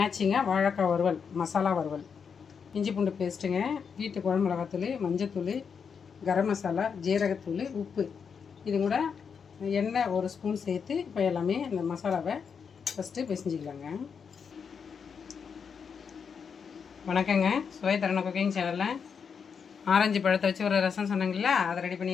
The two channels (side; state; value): right; quieter; 6.4 dB